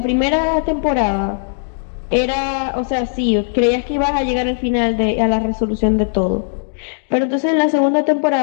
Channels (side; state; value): right; silent; digital silence